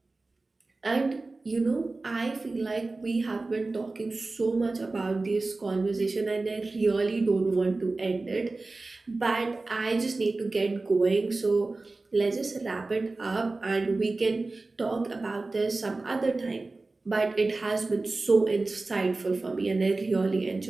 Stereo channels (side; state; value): left; quieter; 3.4 dB